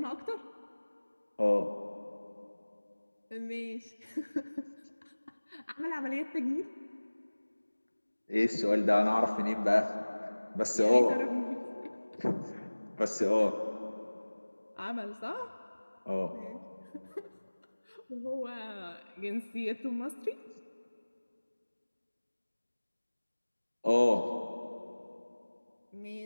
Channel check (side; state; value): both; inverted; correlation -1.00